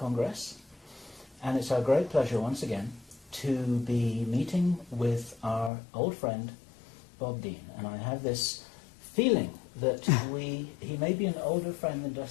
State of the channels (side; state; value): right; drops out; at 5.7 s